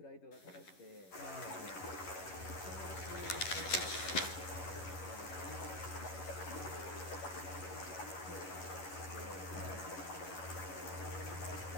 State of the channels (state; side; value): late; right; 11 ms